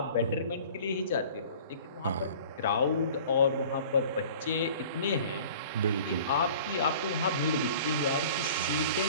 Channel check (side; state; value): both; inverted; correlation -0.46